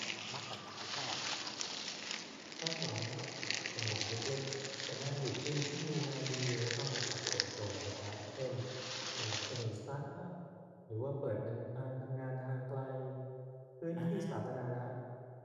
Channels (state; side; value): identical; both; correlation 1.00